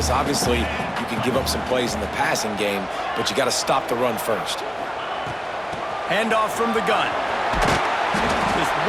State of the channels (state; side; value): identical; both; correlation 1.00